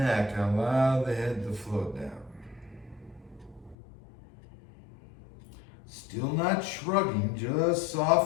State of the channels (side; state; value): right; drops out; at 3.8 s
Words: and allow the head to float down. Still not shrugging, just